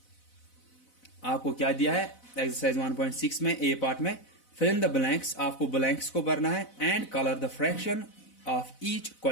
आपको क्या दिया है एक्सरसाइज 1.6 में ए पार्ट में, फिल इन द ब्लैंक्स, आपको ब्लैंक्स को भरना है, and colour the fraction of each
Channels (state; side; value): late; right; 4.0 ms